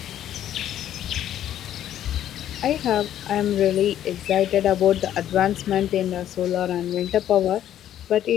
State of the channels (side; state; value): right; quieter; 11.4 dB